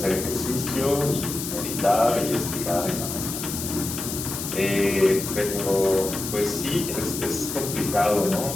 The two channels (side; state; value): left; noise; hiss, 6 dB below the sound